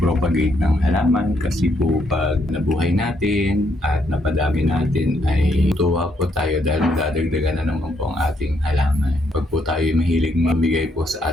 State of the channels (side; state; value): both; normal; correlation 0.74